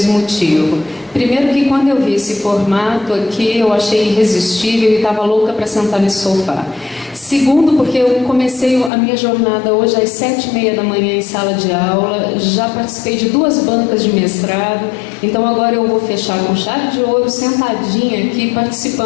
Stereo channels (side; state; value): right; drops out; at 8.9 s